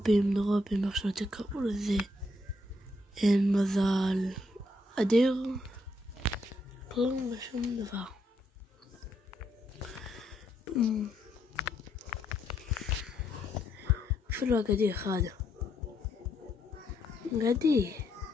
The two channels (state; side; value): normal; both; correlation 0.75